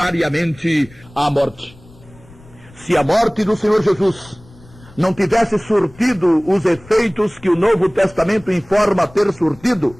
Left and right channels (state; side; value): noise; left; rumble, 24 dB below the sound